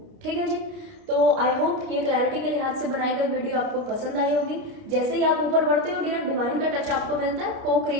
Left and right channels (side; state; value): left; late; 29 ms